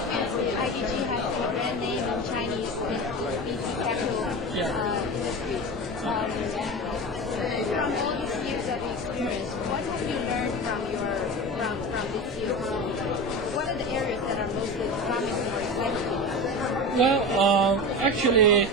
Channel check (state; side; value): normal; both; correlation 0.27